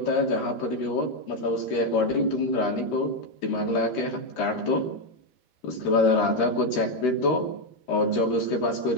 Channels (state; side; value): late; right; 13 ms